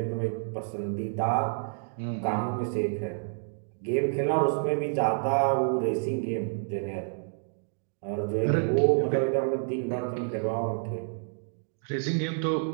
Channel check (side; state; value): left; silent; digital silence